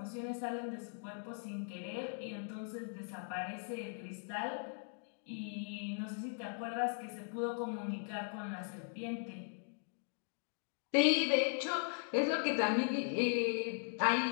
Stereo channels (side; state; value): right; silent; 52 dB below the other